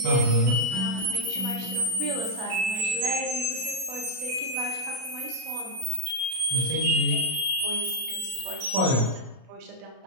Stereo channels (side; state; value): left; late; 32 ms